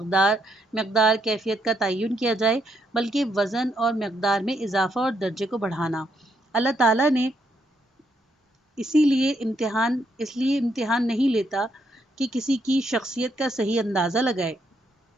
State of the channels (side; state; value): both; normal; correlation 0.76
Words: کیفیت کا تعین کیا جائے، بلکہ وزن اور مقدار میں اضافہ اور درجے کو بڑھانا. اللہ تعالیٰ نے اس لیے امتحان نہیں لیتا کہ کسی کی شخصیت کا صحیح اندازہ لگائے